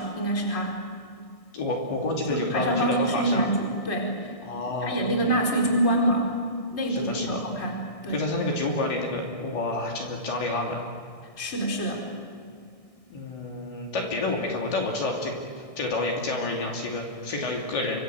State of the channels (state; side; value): late; right; 1.6 ms